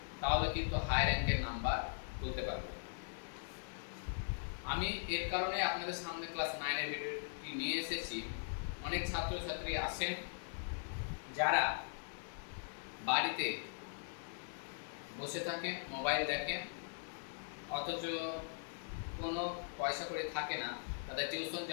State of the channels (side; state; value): right; silent; digital silence